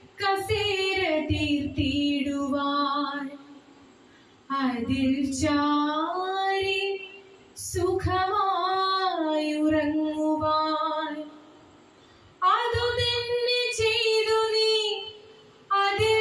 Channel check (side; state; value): both; identical; correlation 1.00